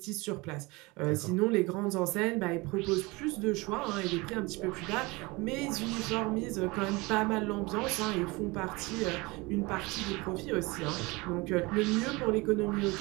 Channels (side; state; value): left; quieter; 24.2 dB